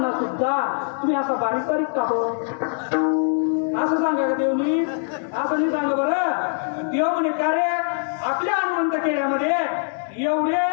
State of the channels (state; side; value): silent; right; digital silence